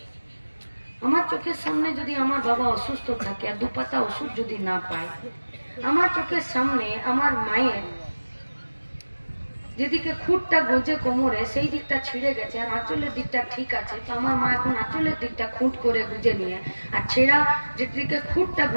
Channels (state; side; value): inverted; both; correlation -1.00